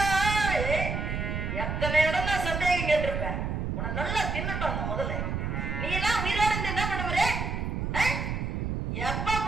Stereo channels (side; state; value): right; noise; rumble, 2 dB below the sound